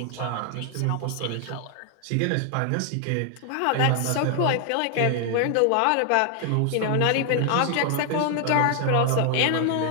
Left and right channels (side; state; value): both; different; correlation 0.00